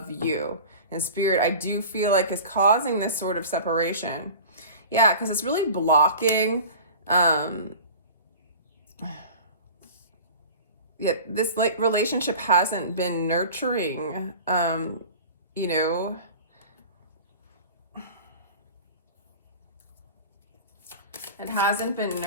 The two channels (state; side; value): inverted; both; correlation -0.37